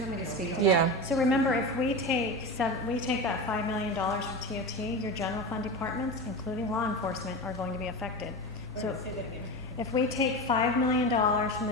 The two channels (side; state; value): both; normal; correlation 0.25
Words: want me to speak to Yeah. that? So remember, if we take that $5 million from TOT, your general fund departments, including law enforcement, are going to be affected. So if we take $5 million from